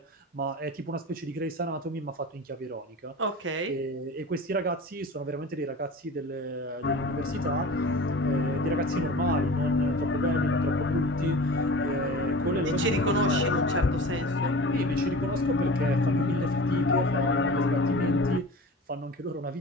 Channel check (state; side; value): normal; both; correlation 0.37